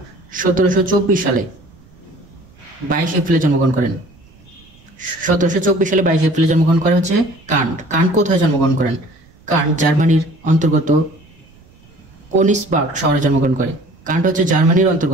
1724 সালে 22 এপ্রিলে জন্মগ্রহণ করেন। 1724 সালে 22 এপ্রিলে জন্মগ্রহণ করে হচ্ছে কান্ট। কান্ট কোথায় জন্মগ্রহণ করেন? কান্ট জার্মানির অন্তর্গত কোনিসবার্গ শহরে জন্মগ্রহণ করে। কান্ট হচ্ছে জার্মানির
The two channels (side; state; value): right; noise; rumble, 28 dB below the sound